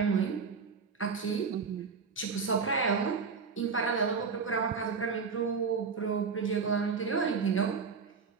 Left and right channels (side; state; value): left; quieter; 5.4 dB